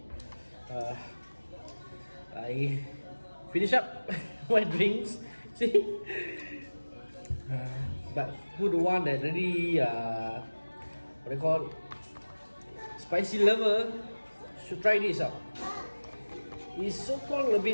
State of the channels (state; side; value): inverted; both; correlation -1.00